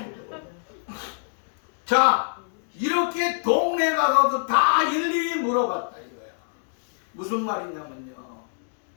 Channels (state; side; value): silent; right; digital silence